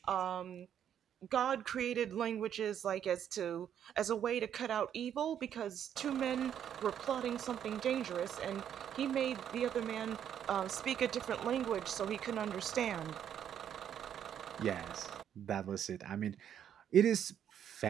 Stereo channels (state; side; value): quieter; left; 9.4 dB